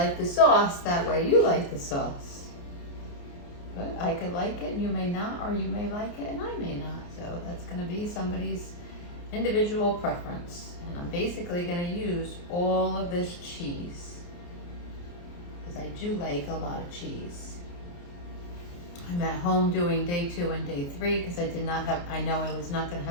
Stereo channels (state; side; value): late; right; 29 ms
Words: the sauce, that way you like the sauce. But I could like it and you may not, or you may like it and I may not. So that's gonna be somebody's individual preference. And I'm basically gonna use all of this cheese, because I do like a lot of cheese. I'm at home doing day 2 and day 3 because I know I was not gonna